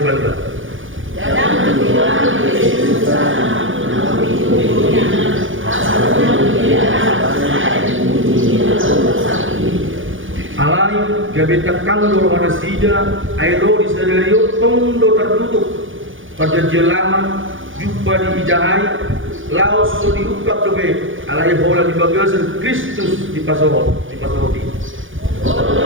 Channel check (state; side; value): late; left; 0.57 ms